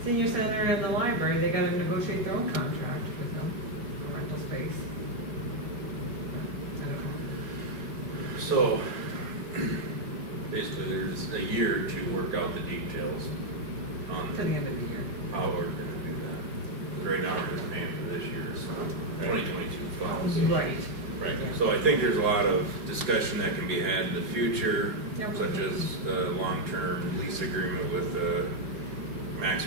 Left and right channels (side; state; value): left; late; 4.4 ms